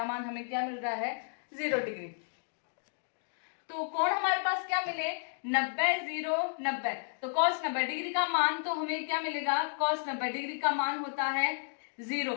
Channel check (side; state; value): right; silent; digital silence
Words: मान हमें क्या मिल रहा है, 0 डिग्री। तो कोण हमारे पास क्या मिले, 90 0 90। तो कॉस 90 डिग्री का मान तो हमें क्या मिलेगा, कॉस 90 डिग्री का मान होता है 0।